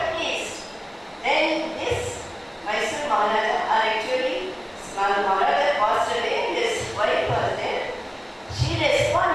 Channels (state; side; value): identical; both; correlation 1.00